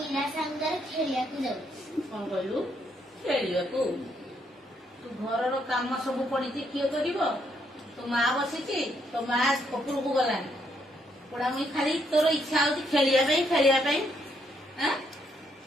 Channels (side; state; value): both; normal; correlation 0.74